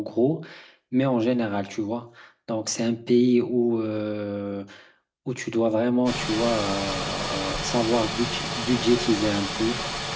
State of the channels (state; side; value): identical; both; correlation 1.00